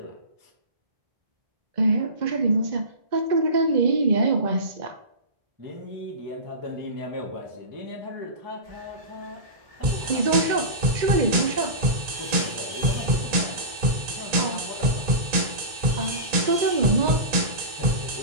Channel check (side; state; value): left; late; 2.2 ms